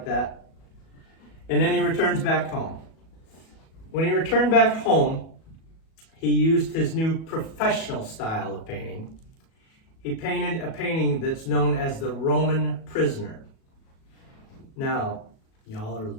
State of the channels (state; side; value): late; right; 37 ms